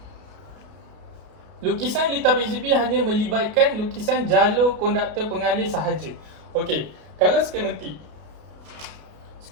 Lukisan litar PCB hanya melibatkan lukisan jalur konduktor pengalih sahaja. Okey, kalau skematik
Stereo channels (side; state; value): left; late; 32 ms